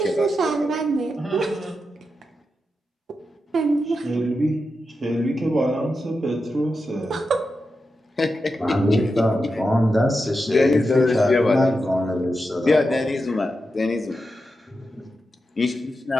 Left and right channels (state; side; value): normal; both; correlation 0.88